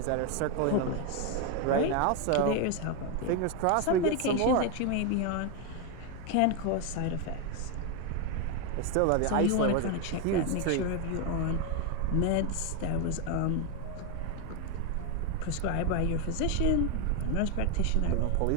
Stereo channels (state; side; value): different; both; correlation 0.01